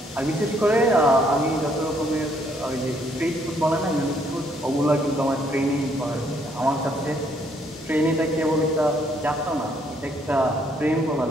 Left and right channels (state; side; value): normal; both; correlation 0.68